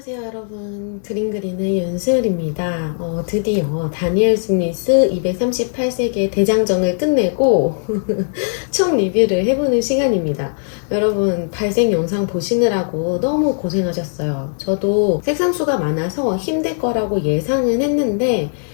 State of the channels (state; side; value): silent; right; 65 dB below the other